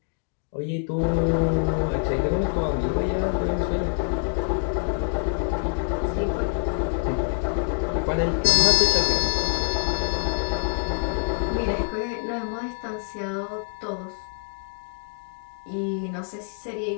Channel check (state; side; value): silent; right; 61 dB below the other